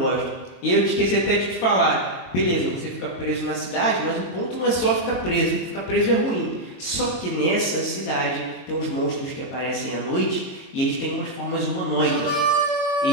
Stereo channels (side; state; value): right; late; 22 ms